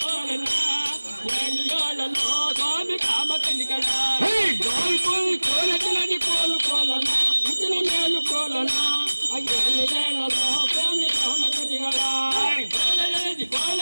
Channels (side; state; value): both; inverted; correlation -1.00